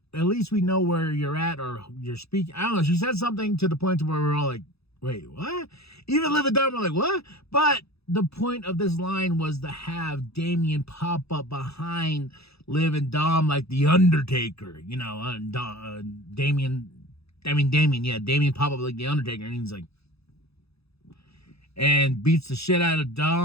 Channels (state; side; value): late; right; 0.78 ms